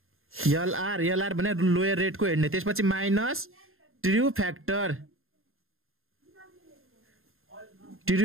LR भने लोयर रेट को हेर्ने त्यसपछि माइनस ट्रू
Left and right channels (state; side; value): late; left; 0.61 ms